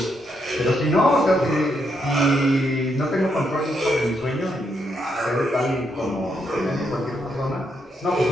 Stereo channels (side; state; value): both; normal; correlation 0.78